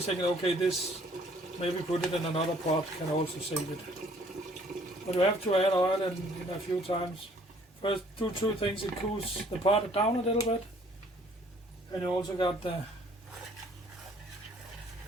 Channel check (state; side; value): normal; both; correlation 0.59